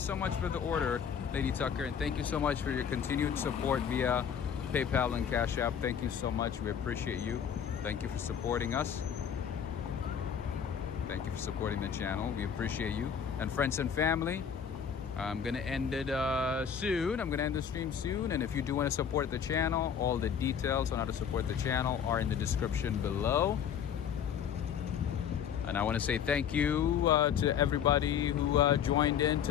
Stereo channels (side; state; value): right; quieter; 8.0 dB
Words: much for the order, Lady Tucker, and thank you so much for your continued support via PayPal and Cash App. Thank you so much. We appreciate you. Thank you for supporting us. Thank you for supporting the channel. We appreciate you. And friends and family, I'm gonna end it soon. I'm gonna end the stream soon. And if you do want to support the channel, all the details on how to support the channel are in the description below. And I want to say thank you to everybody who joined in